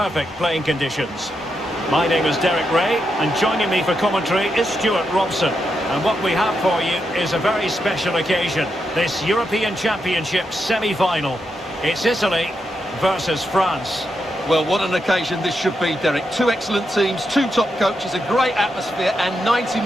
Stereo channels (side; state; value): both; normal; correlation 0.84